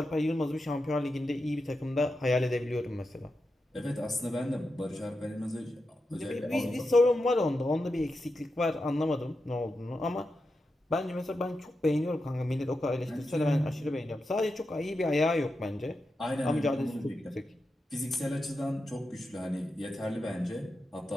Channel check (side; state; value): both; normal; correlation 0.89